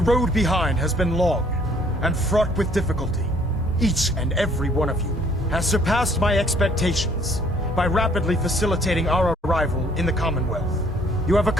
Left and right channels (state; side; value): normal; both; correlation 0.60